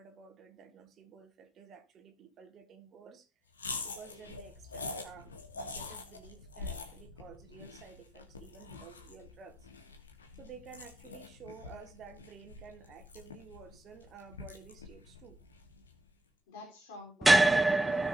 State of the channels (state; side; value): normal; both; correlation 0.85